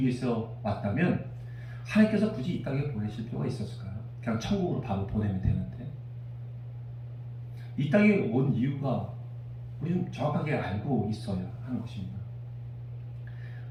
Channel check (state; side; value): identical; both; correlation 1.00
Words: 위해서 왔다면 하나님께서 굳이 이 땅에 보내실 필요가 있었을까요? 그냥 천국으로 바로 보내면 되는데. 이 땅에 온 이유가 우리는 정확하게 알고 있어야 하는 것입니다.